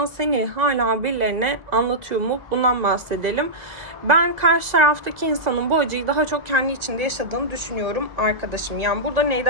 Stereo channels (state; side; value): late; left; 2.0 ms